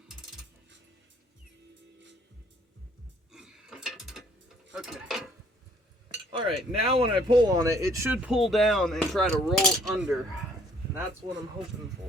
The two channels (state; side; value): normal; both; correlation 0.60